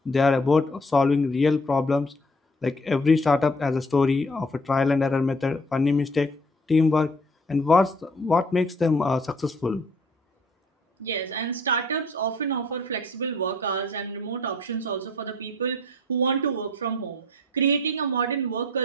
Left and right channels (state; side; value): normal; both; correlation 0.57